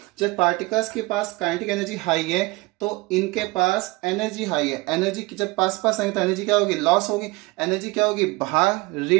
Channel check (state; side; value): quieter; left; 23.4 dB